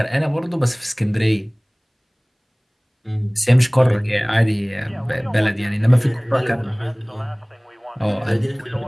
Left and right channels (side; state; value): both; identical; correlation 1.00